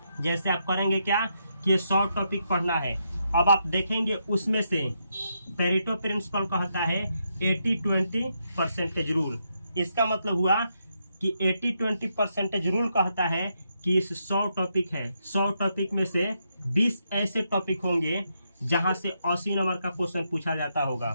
आप करेंगे क्या कि ये 100 टॉपिक पढ़ना है, अब आप देखेंगे उसमें से पेरेटो प्रिंसिपल कहता है 80-20 परसेंटेज रूल। इसका मतलब हुआ कि 80-20 परसेंटेज रूल कहता है कि इस 100 टॉपिक है, 100 टॉपिक में से 20 ऐसे टॉपिक होंगे जहां से 80 नंबर का क्वेश्चन पूछा जाता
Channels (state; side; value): inverted; both; correlation -0.80